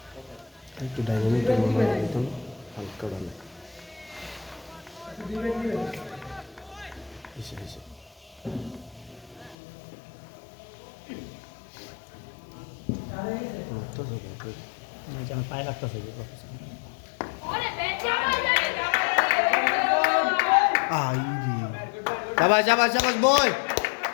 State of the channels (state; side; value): drops out; right; at 9.6 s